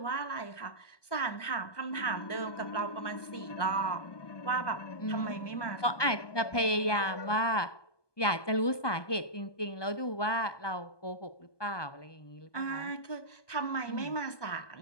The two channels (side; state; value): right; late; 1.2 ms